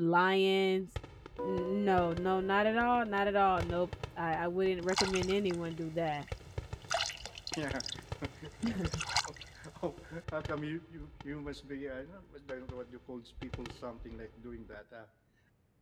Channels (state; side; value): identical; both; correlation 1.00